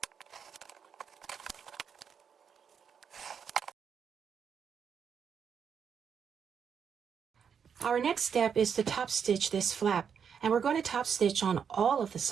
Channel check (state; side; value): quieter; left; 7.2 dB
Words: Our next step is to top stitch this flap, and we're going to top stitch on all of the